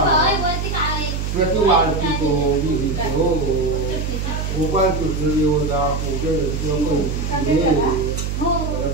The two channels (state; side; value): noise; right; hum, 2 dB below the sound